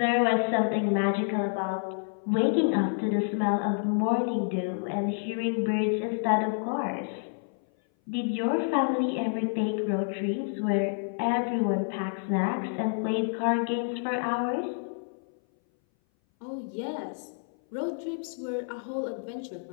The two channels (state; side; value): silent; right; 58 dB below the other